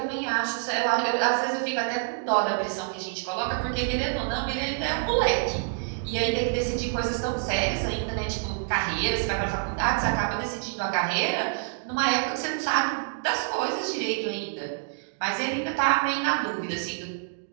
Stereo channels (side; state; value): left; silent; digital silence